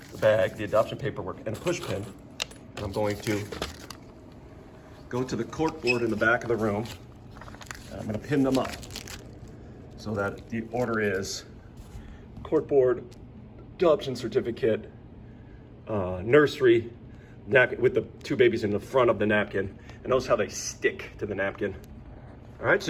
the adoption paperwork, and a push pin. And I'm going to go to the cork board in the back of the room. And I'm going to pin them up so that the order is cork board, adoption certificate, nursery, napkin with the two babies in the front of the napkin. And notice how they stick to the napkin. All right,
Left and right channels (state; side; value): identical; both; correlation 1.00